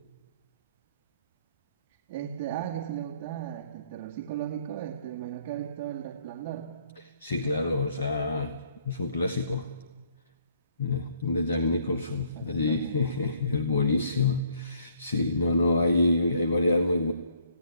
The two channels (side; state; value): both; inverted; correlation -0.63